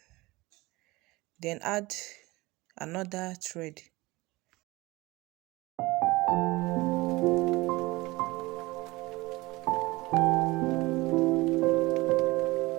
Then add another thread.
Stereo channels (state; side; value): quieter; left; 21.4 dB